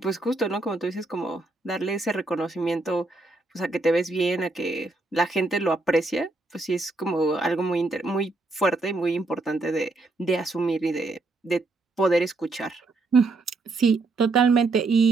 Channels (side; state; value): left; quieter; 3.2 dB